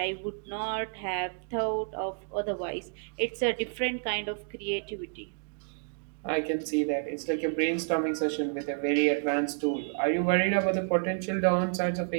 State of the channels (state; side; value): silent; left; digital silence